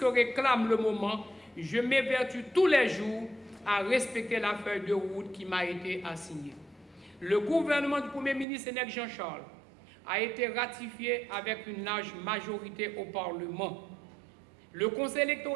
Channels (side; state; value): left; drops out; at 8.5 s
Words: réclame le moment, je m'évertue tous les jours à respecter la feuille de route qui m'a été assignée. Le gouvernement du Premier ministre Sénèque Jean-Charles a été ratifié avec une large majorité au Parlement. Le Conseil